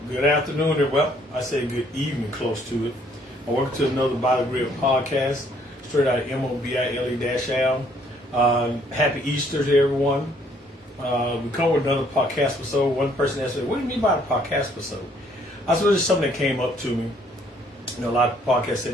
Good afternoon, and well, I say good evening, close to it. Welcome to another By the Grid podcast, straight out of MOBILE-Al. Happy Easter to everyone. We come with another podcast episode. One person asked me, "What do you mean by a podcast episode?" I said, "It's something that came up to me. You know, a lot of podcasts say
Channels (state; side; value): normal; both; correlation 0.64